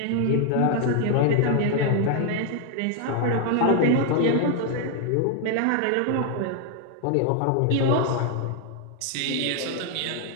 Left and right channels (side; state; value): both; different; correlation 0.00